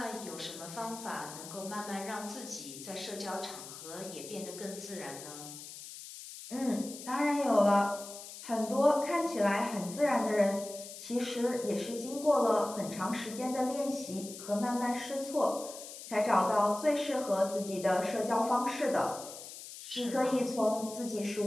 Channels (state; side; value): noise; left; hiss, 13 dB below the sound